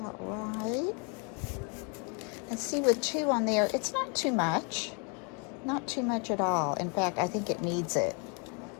right. And see, with 2 on there, it's not too much. Not too much at all. In fact, I think it needs it.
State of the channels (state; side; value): quieter; right; 35.8 dB